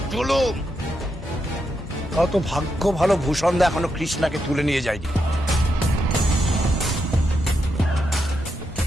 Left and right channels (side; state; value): both; normal; correlation 0.83